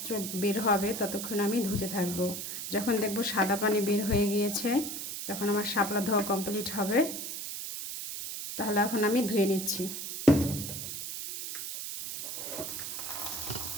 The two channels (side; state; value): right; noise; hiss, 6 dB below the sound